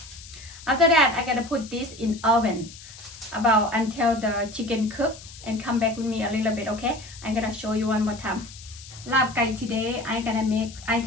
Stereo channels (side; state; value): left; noise; hiss, 17 dB below the sound